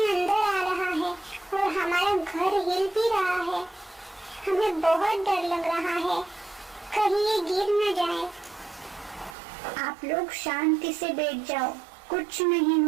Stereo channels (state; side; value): drops out; left; at 9.3 s